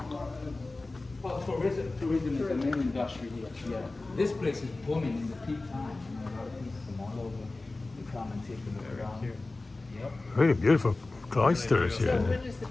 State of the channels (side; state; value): right; quieter; 3.2 dB